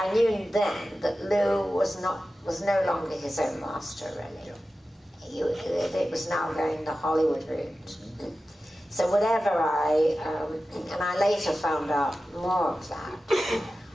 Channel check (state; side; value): normal; both; correlation 0.94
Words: knew then that Lou was no longer his own master, really. It was now going the Hollywood route. So whatever and I later found out more of that